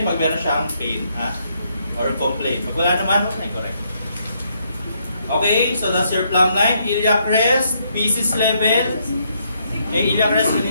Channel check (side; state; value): both; inverted; correlation -0.74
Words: pag meron siyang pain, ha? Or complaint. Pag wala naman, huwag na i-correct. Okay, so that's your plumb line. Iliac crest, pieces level. Iliac crest